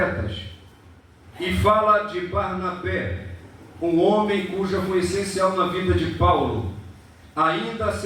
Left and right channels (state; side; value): identical; both; correlation 1.00